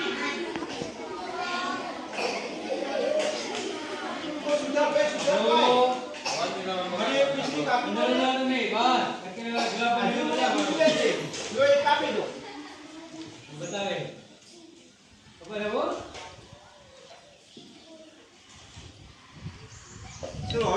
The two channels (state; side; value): identical; both; correlation 1.00